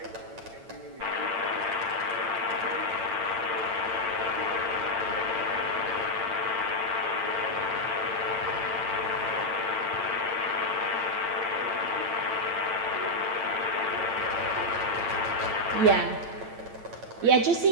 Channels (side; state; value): left; late; 8.9 ms